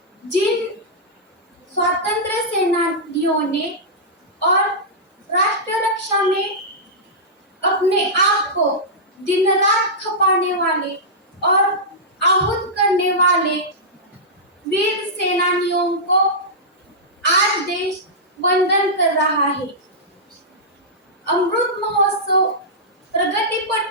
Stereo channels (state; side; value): normal; both; correlation -0.12